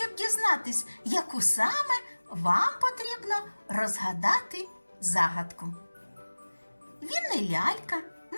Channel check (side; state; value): both; inverted; correlation -1.00